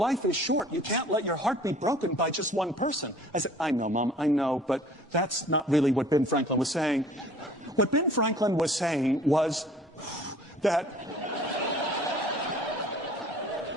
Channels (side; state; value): both; normal; correlation 0.51